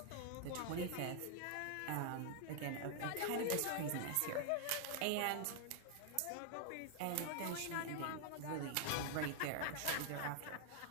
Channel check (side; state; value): both; different; correlation 0.00